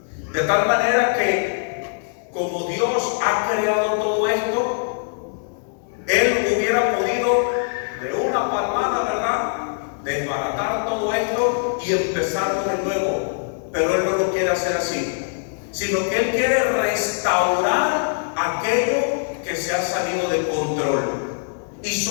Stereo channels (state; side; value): silent; right; 64 dB below the other